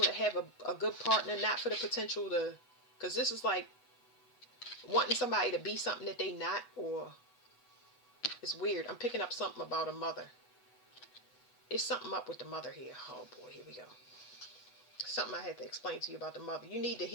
have a good partner. Not for the potential to... Because this is like wanting somebody to be something that they not, or... It's weird. I'm picking up something about a mother. It's something up with the mother here. Oh boy, here we go. Something I had to explain to you about the mother. You need to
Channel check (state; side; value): late; right; 8.0 ms